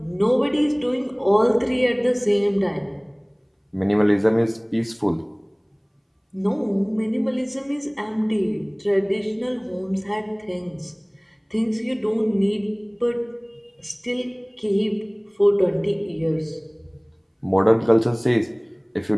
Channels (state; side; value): identical; both; correlation 1.00